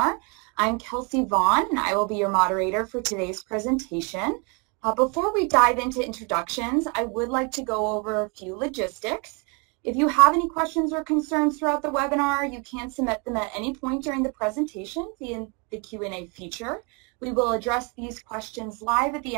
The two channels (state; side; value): quieter; left; 32.8 dB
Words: I'm Kelsey Vaughn, and I will be your moderator for today's presentation. Before we dive into introductions, I would like to go over a few logistics. If you have any questions or concerns throughout the webinar, you can submit them at any point during the presentation via the Q&A feature. We will address these questions live at the